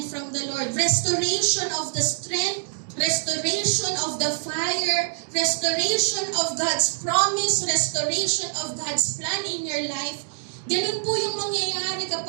from the Lord? Restoration of the strength, restoration of the fire, restoration of God's promise, restoration of God's plan in your life. Ganun po yung mangyayari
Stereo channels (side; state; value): left; silent; digital silence